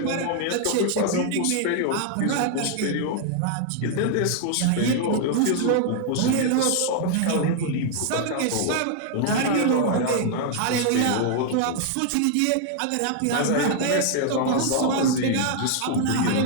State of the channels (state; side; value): different; both; correlation 0.00